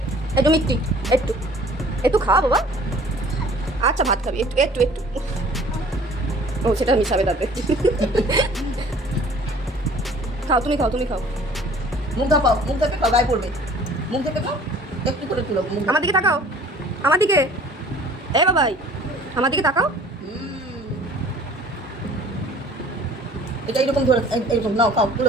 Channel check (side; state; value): both; normal; correlation 0.51